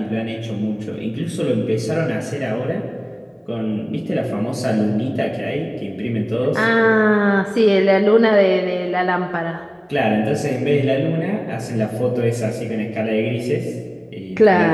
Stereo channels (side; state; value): both; identical; correlation 1.00